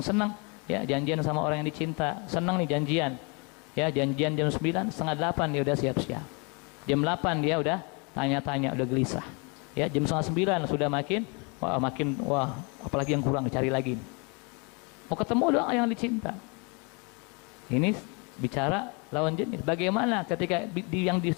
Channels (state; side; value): quieter; right; 32.3 dB